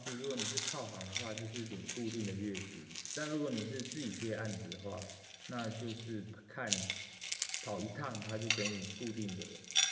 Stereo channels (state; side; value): identical; both; correlation 1.00